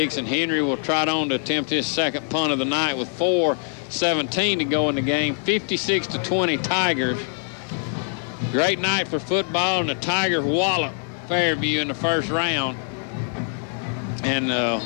and Henry will trot on to attempt his 2nd punt of the night with 4:17 to go in the game. 56-20 Tigers. Great night for football, and the Tigers wallop Fairview in the 1st round and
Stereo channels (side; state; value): right; silent; 55 dB below the other